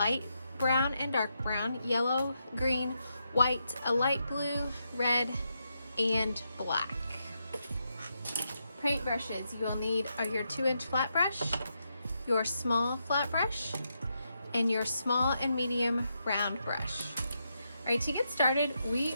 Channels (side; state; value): both; inverted; correlation -0.83